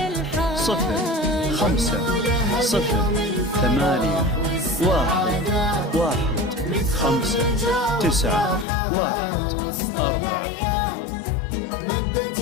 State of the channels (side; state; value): right; drops out; at 8.7 s